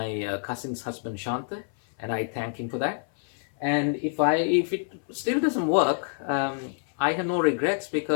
cousin's husband Shanta, and I thank him for that. And if it still doesn't work, I have no regrets,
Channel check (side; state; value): right; silent; 58 dB below the other